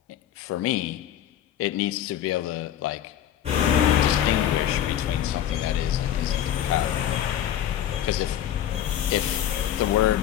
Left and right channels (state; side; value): quieter; right; 10.9 dB